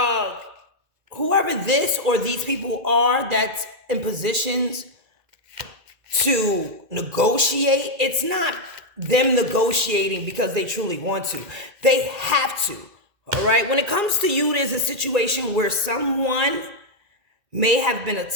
whoever this or these people are that's in positions to negotiate, it's not them negotiating because they truly want to. They have to. All right. When it comes to you, there's a situation where someone may have been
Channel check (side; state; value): left; late; 2.3 ms